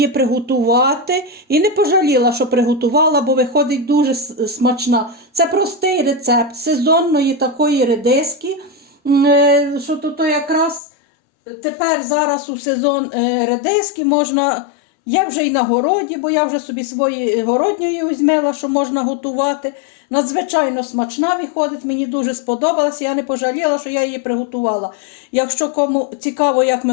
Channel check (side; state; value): right; drops out; at 10.8 s